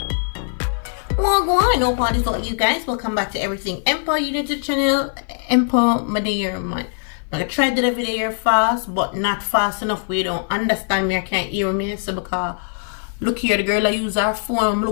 Well, go on, no parties about you guys. Welcome back to Everything Empo. You new to the channel, Empo, my day man. I'm gonna try to do the video fast, but not fast enough where you don't understand me or can't hear me. So because look here, the girl I use her phone,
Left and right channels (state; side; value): silent; right; 56 dB below the other